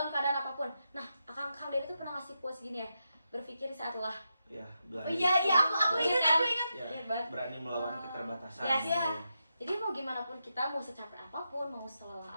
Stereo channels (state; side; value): inverted; both; correlation -0.86